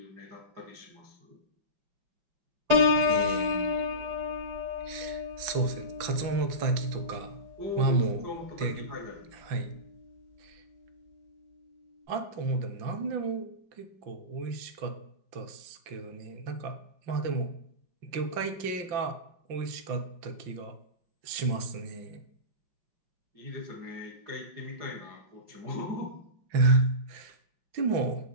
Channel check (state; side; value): late; left; 5.8 ms